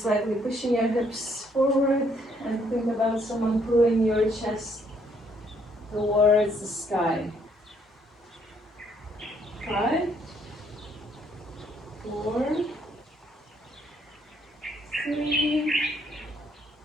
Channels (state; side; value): normal; both; correlation 0.68